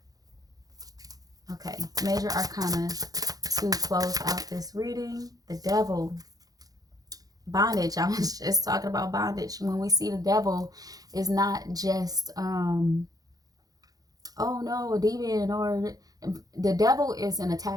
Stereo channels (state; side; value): late; left; 0.18 ms